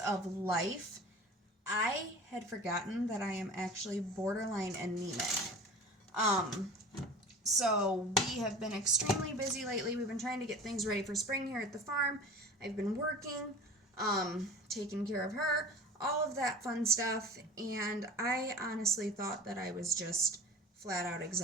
life, I had forgotten that I am actually borderline anemic. So we have been extremely busy lately. We've been trying to get things ready for spring here at the farm. I've been working, taking care of her, all of that fun stuff, and I honestly thought that I was just flat out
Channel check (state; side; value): normal; both; correlation 0.39